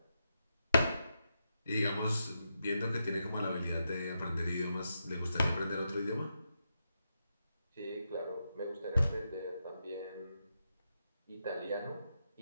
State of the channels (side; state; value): both; inverted; correlation -0.84